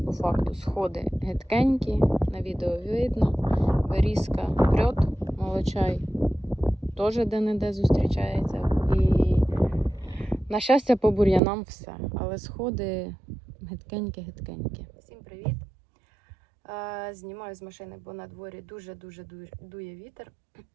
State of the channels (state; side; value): drops out; left; at 11.4 s